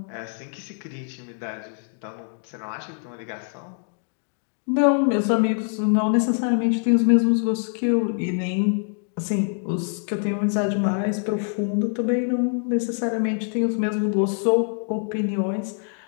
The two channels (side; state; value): right; silent; 55 dB below the other